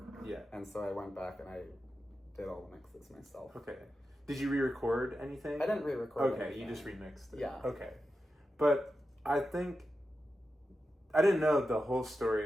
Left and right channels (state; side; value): normal; both; correlation 0.90